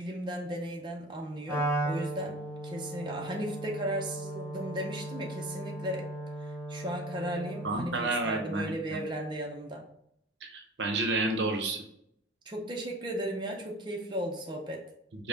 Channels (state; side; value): normal; both; correlation 0.39